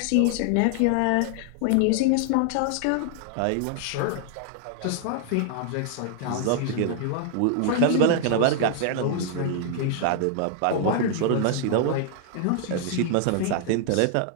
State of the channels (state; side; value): different; both; correlation 0.00